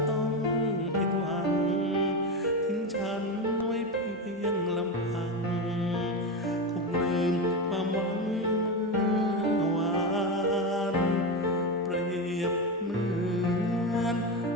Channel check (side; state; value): both; normal; correlation 0.16